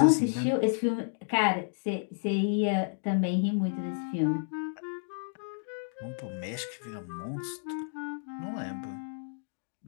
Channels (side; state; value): right; silent; digital silence